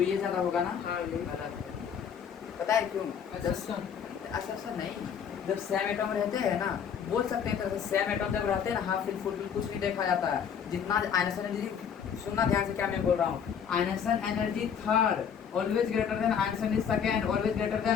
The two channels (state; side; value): quieter; right; 7.6 dB